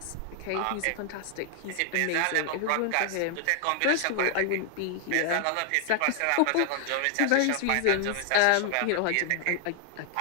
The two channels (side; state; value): both; different; correlation 0.00